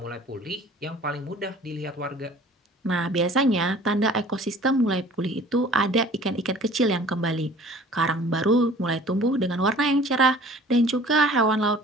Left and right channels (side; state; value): both; normal; correlation 0.49